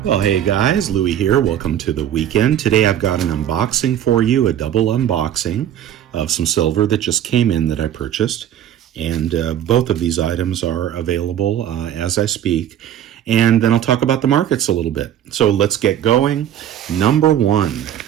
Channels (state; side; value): quieter; left; 10.6 dB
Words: Well, hey guys, Louie here. Welcome to the weekend. Today I've got an unboxing for you, a double unboxing of some silver that just came in that I purchased. And both of these items are available as I speak. And then I'll talk about the markets a little bit. So let's get going. Number one,